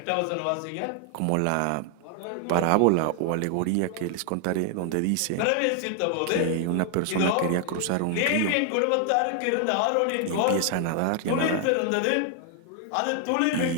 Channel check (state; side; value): different; both; correlation 0.00